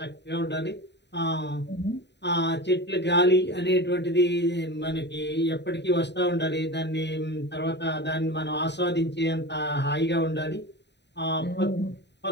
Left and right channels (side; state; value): right; late; 0.50 ms